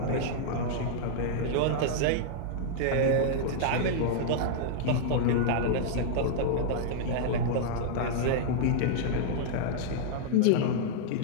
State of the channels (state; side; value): different; both; correlation -0.01